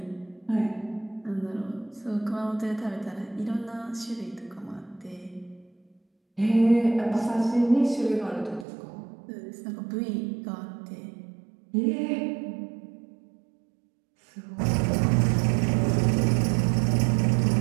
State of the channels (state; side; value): drops out; left; at 8.7 s